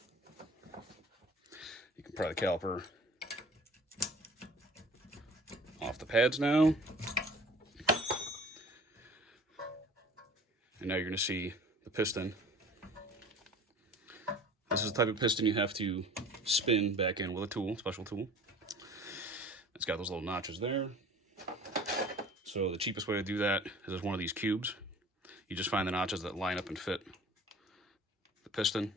You can pry the caliper off the pads now. And now you're going to see the piston. This is the type of piston you have to spin back in with a tool, special tool. It's got those little notches there. So the cheapest way to do that is with one of these cubes. You just find the notches that line up and fit the piston,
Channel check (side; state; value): both; normal; correlation 0.45